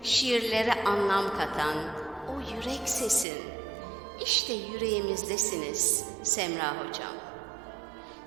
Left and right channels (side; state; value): left; drops out; at 3.2 s